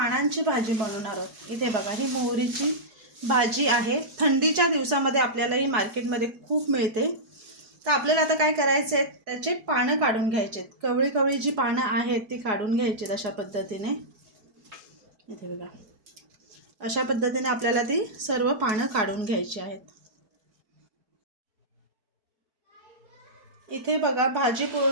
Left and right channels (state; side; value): late; left; 4.8 ms